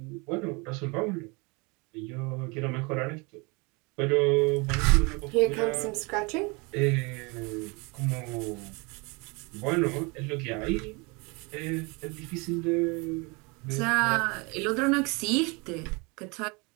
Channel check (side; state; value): left; quieter; 28.5 dB